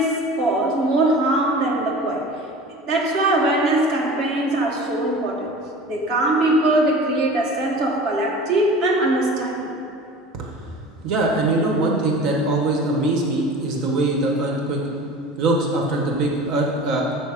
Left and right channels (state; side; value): normal; both; correlation 0.38